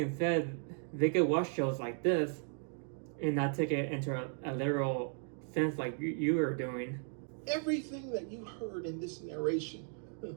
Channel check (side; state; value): left; silent; 54 dB below the other